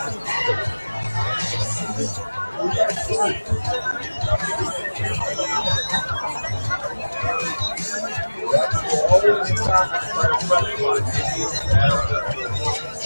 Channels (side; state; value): both; inverted; correlation -1.00